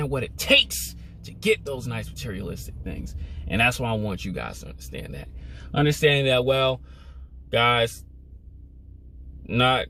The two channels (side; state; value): both; identical; correlation 1.00